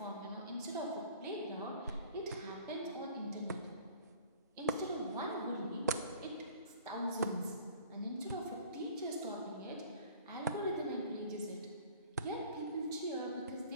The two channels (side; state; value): both; inverted; correlation -0.49